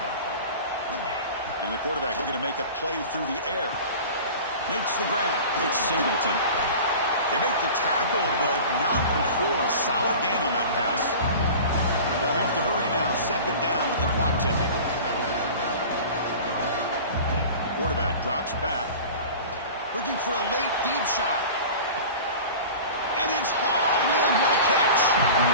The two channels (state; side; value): inverted; both; correlation -0.38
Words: And the quarterback looking to make a play through the air. Makes the grab. It's Singleton. They make the tackle, but not before a solid gain on that pass. They'll have to hurry now. Second down with the clock ticking. Quarterback drops back. Looking for a late deep shot. And it's hauled in. What a catch.